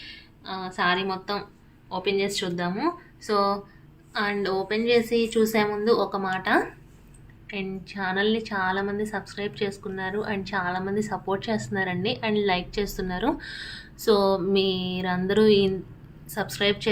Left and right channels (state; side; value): identical; both; correlation 1.00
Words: సారీ మొత్తం ఓపెన్ చేసి చూద్దాము. సో అండ్ ఓపెన్ చేసి చూసే ముందు ఒక మాట, అండ్ ఛానల్ని చాలామంది సబ్స్క్రైబ్ చేసుకున్నారు అండ్ చాలామంది సపోర్ట్ చేస్తున్నారండి అండ్ లైక్ చేస్తున్నారు. సో మీరందరూ సబ్స్క్రైబ్